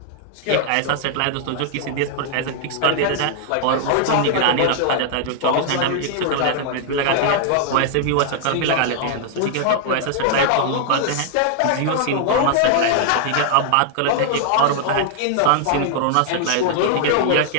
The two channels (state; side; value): different; both; correlation -0.01